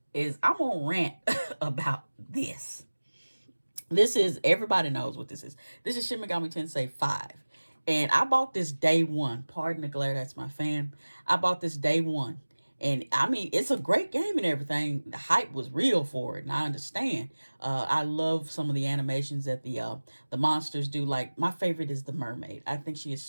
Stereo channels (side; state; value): both; inverted; correlation -1.00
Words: is I'm going to rant about this. This is, everybody knows what this is. This is Shin Megami Tensei 5. And I bought this day one. Pardon the glare, that's my fan. I bought this day one. And I mean, it's a great game and everything. The hype was real for it, and I understand. I love some of the animations that the monsters do. Like, my favorite is the mermaid. I think she is